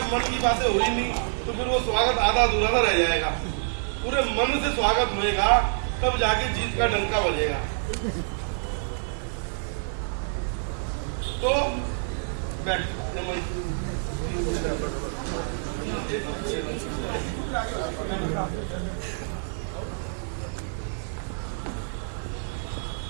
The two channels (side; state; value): left; silent; digital silence